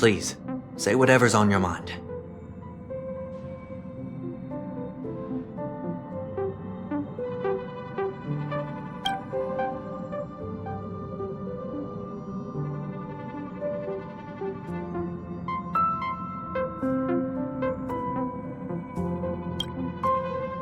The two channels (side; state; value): both; identical; correlation 1.00